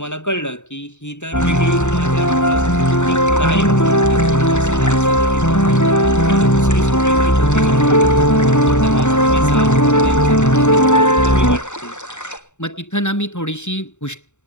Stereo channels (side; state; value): right; late; 0.84 ms